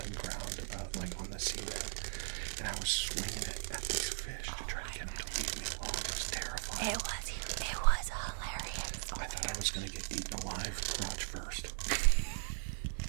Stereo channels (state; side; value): silent; left; digital silence